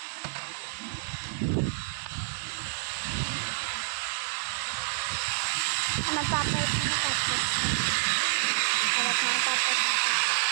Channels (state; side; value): silent; left; digital silence